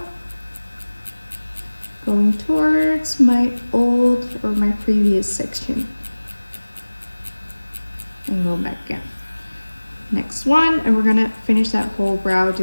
Going towards my old or my previous section. And go back again. next one, and we're gonna finish that whole brow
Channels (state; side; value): inverted; both; correlation -1.00